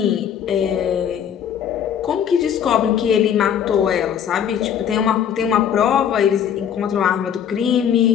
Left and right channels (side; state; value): right; quieter; 8.8 dB